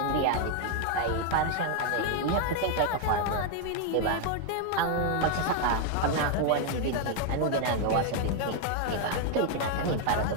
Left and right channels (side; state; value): both; different; correlation 0.00